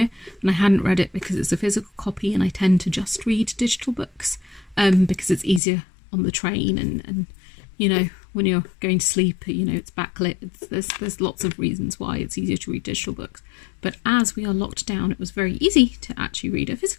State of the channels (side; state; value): right; drops out; at 5.6 s